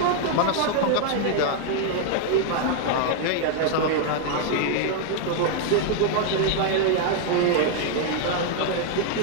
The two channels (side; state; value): both; different; correlation 0.00